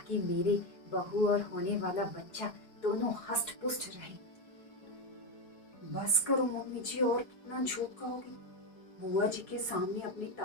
मेरी बहू और होने वाला बच्चा दोनों हष्ट पुष्ट रहे। बस करो मम्मी जी, और कितना झूठ कहोगी? बुआ जी के सामने अपनी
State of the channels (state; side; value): late; right; 4.7 ms